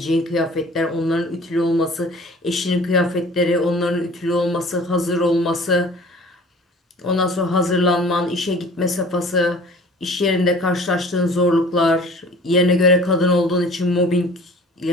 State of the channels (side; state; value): both; normal; correlation 0.47